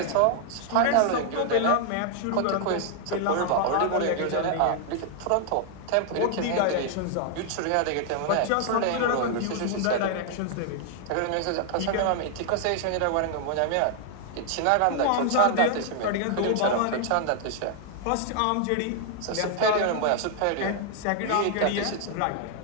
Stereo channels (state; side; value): different; both; correlation 0.00